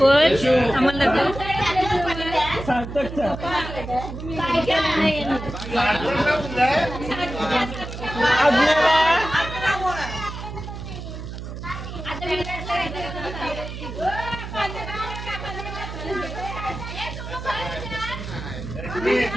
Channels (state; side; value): noise; right; hum, 9 dB below the sound